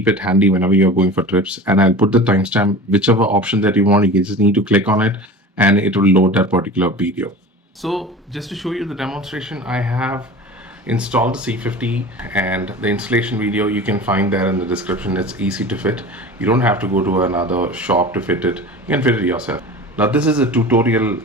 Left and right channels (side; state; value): both; normal; correlation 0.36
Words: it handy whenever you're going for trips, and I'll put the timestamp. Whichever option that you want, you just need to click on it and it will load that particular video. So just to show you the demonstration, I have installed the C50, and the installation video you can find there in the description. It's easy to fit. You don't have to go to another shop to fit it. You can fit it yourself. Now this is a tutorial